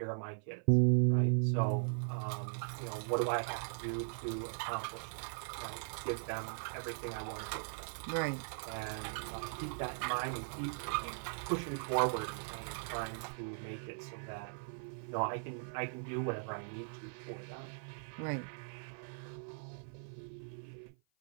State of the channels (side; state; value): left; silent; 52 dB below the other